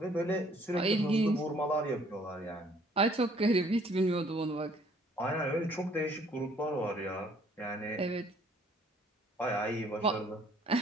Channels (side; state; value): both; normal; correlation 0.61